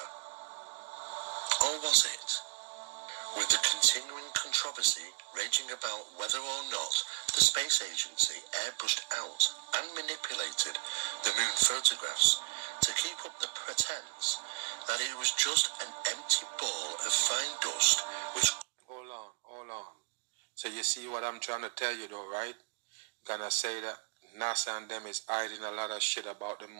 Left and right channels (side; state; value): left; quieter; 33.1 dB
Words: Or was it? With the continuing controversy raging about whether or not the space agency airbrushed out and manipulated the moon photographs to keep up the pretense that it was just an empty ball of fine dust which... Hold on. So you see what I'm trying to tell you though, right? Gonna say that NASA and them is hiding a lot of shit about the